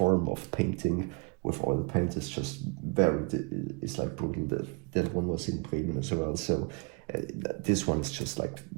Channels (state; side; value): quieter; left; 30.8 dB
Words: of painting with oil paint is just it's like brutal. That one was in Bremen as well, so this one is just like